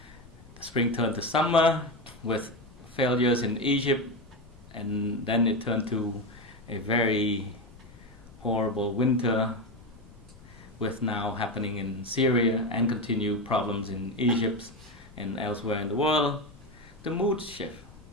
The spring turned to summer with failures in Egypt, and then it turned to a very horrible winter with now happening in Syria and continued problems in Egypt and elsewhere in the world. The mood shift,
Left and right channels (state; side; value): noise; left; rumble, 22 dB below the sound